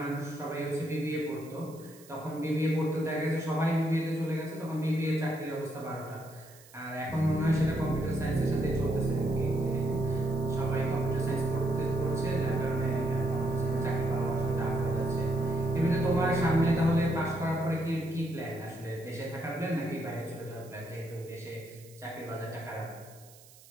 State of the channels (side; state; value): right; noise; hiss, 23 dB below the sound